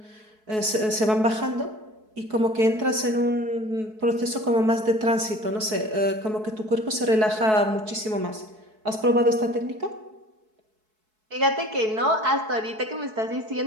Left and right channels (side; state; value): left; late; 4.6 ms